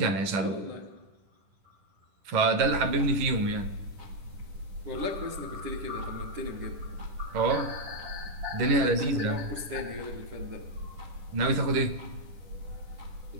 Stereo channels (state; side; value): late; left; 10 ms